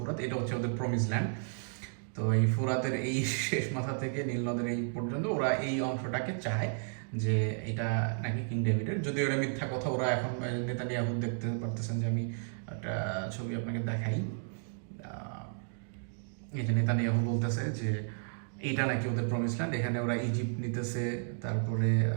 এটা হচ্ছে ওদের প্রমিস ল্যান্ড। তো এই ফুরাতের এই শেষ মাথা থেকে নীল নদের এই পর্যন্ত ওরা এই অংশটাকে চায় যে এটা নাকি কিং ডেভিডের। যদিও ওরা মিথ্যা কথা, ওরা এখন নেতানিয়াহু দেখতে পারতেছেন যে আমি একটা ছবি আপনাকে দেখাই। এই যে নেতানিয়াহু বলতেছে যে এইটা নাকি ওদের প্রমিস ল্যান্ড, এখানে ওরা ইজিপ্ট নিতেছে, তারপরে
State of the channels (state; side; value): silent; left; digital silence